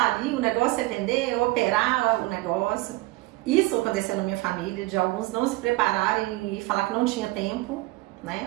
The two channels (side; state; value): left; quieter; 20.7 dB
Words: ali, o negócio é vender, operar o negócio. Isso aconteceu na minha família, de alguns não se prepararem e falar que não tinha tempo,